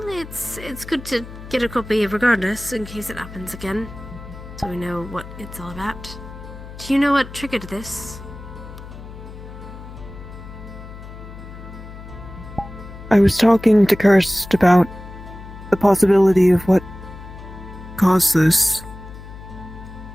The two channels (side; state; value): left; noise; hum, 14 dB below the sound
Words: it's good to get a copy regardless, in case it happens again. So we know what it's all about. Do you know what triggered this? I was talking to Kirst about the possibility of what caused this.